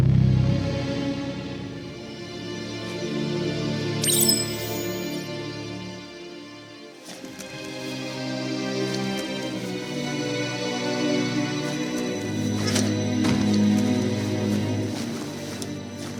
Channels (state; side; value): identical; both; correlation 1.00